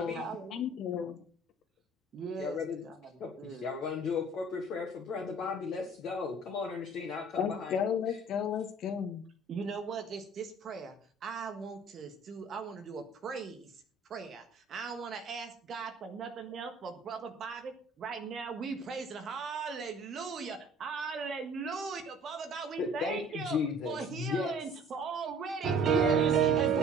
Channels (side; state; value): both; normal; correlation 0.50